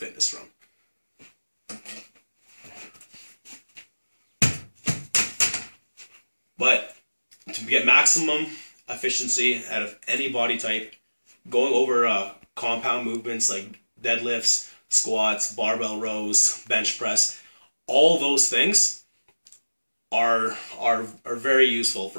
from. But to get maximum efficiency out of any body type, going over compound movements like deadlifts, squats, barbell rows, bench press, all those things are very useful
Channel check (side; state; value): both; inverted; correlation -1.00